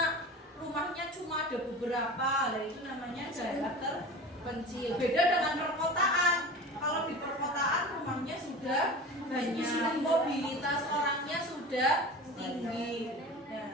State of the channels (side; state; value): both; normal; correlation 0.34